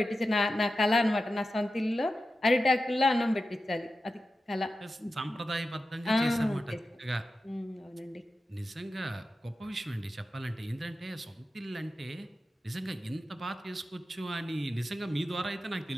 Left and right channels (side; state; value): both; normal; correlation 0.92